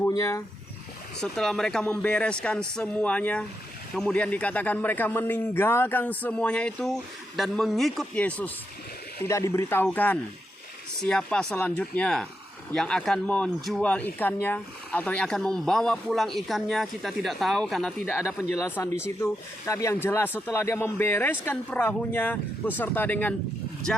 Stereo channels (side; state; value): both; normal; correlation 0.84